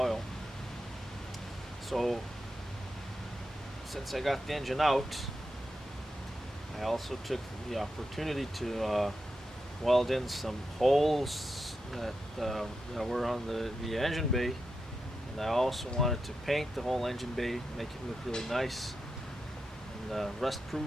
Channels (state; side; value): normal; both; correlation 0.87